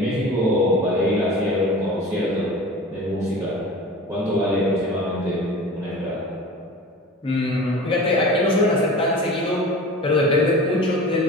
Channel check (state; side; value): normal; both; correlation 0.37